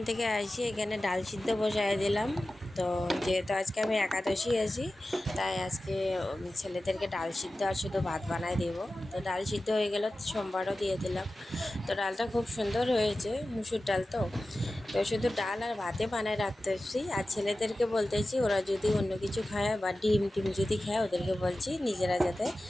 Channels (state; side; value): normal; both; correlation 0.95